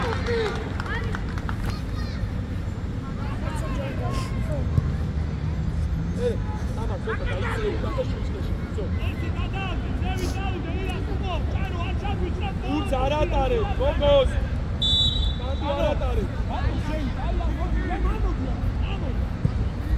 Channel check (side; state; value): both; identical; correlation 1.00